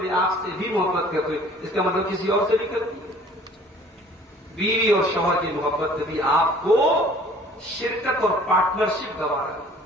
آپ سے بھی محبت کرتے ہوئے، اس کا مطلب کسی اور سے بھی کرتی ہے. بیوی اور شوہر کی محبت میں بھی آپ کو شرکت اور پارٹنرشپ گوارا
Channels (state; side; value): normal; both; correlation 0.52